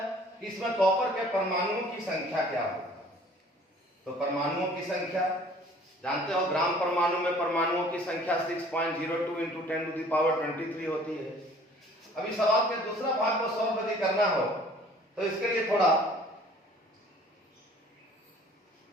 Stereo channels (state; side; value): normal; both; correlation 0.52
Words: कि इसमें कॉपर के परमाणुओं की संख्या क्या होगी। तो परमाणुओं की संख्या जानते हो, ग्राम परमाणु में परमाणुओं की संख्या 6.02 into 10⁻23 होती है। अभी सवाल के दूसरा भाग को सॉल्व यदि करना हो तो इसके लिए थोड़ा